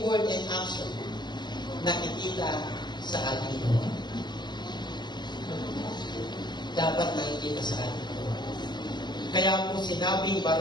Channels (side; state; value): right; late; 0.21 ms